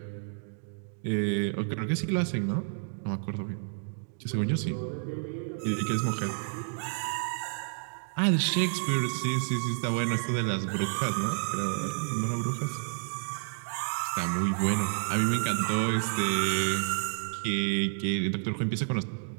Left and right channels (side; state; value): left; silent; digital silence